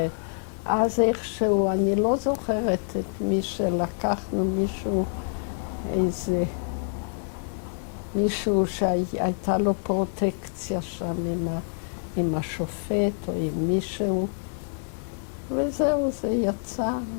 אז איכשהו, אני לא זוכרת את מי שלקחנו, מישהו שהייתה לו פרוטקציה שם עם השופט או עם מישהו, וזהו, זה יצא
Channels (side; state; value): right; silent; digital silence